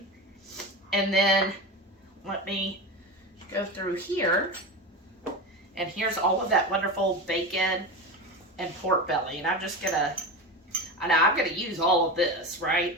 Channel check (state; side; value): normal; both; correlation 0.24